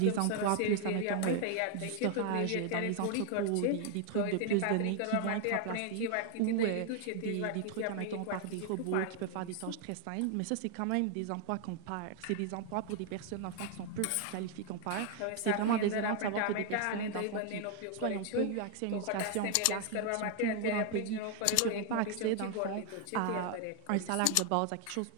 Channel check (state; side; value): different; both; correlation 0.00